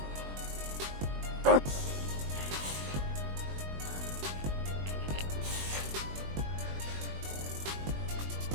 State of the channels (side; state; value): left; late; 21 ms